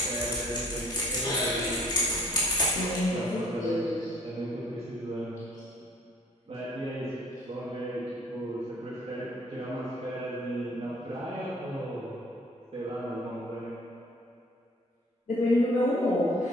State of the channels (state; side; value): normal; both; correlation 0.55